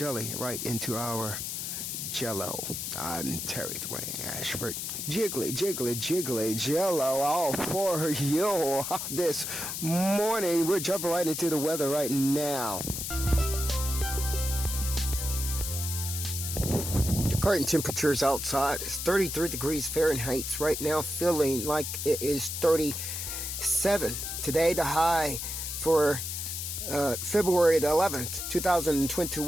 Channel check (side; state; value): left; noise; hiss, 4 dB below the sound